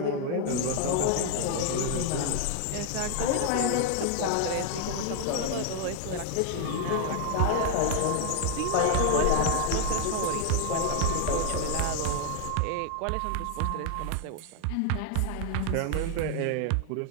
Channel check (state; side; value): different; both; correlation 0.00